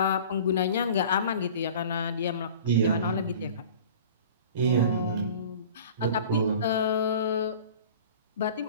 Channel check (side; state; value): both; inverted; correlation -0.43